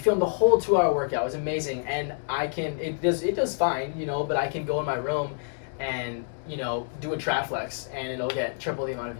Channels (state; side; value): silent; right; digital silence